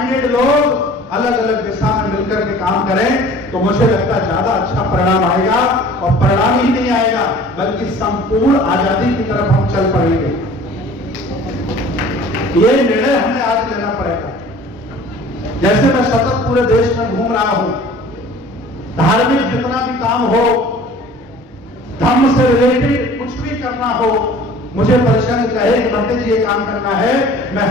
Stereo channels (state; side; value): normal; both; correlation 0.47